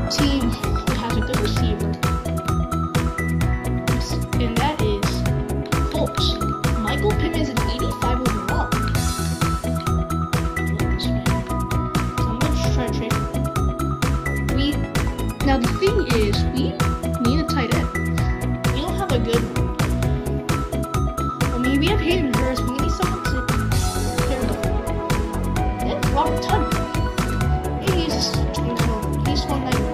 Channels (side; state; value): both; identical; correlation 1.00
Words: team that has a good receiver, and that is Colts. Michael Pittman is an 85 overall. I love this man. So I'm going to try to trade him. Now the thing is, we need a tight end. We don't have a good one. I mean, we have Hayden Hurst, but we need someone to pair with. And Robert Tunyon. He's 190.